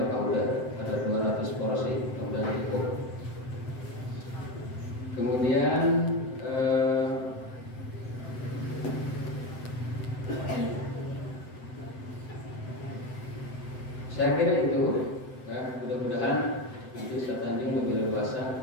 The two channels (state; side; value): late; right; 7.8 ms